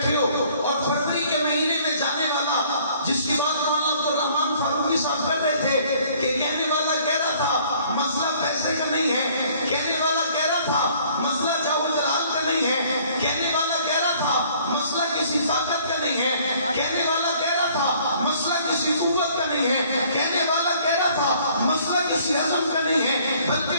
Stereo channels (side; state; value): both; inverted; correlation -0.58